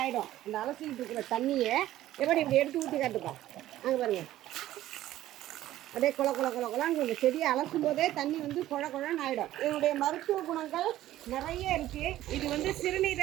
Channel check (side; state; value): left; quieter; 14.1 dB